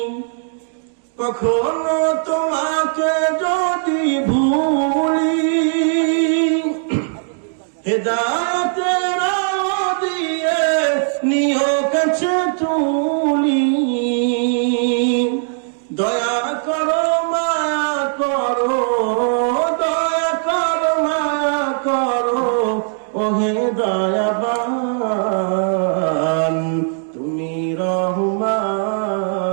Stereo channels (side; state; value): left; silent; digital silence